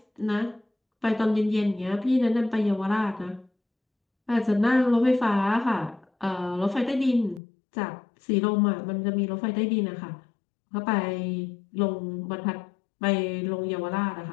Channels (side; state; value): right; drops out; at 7.4 s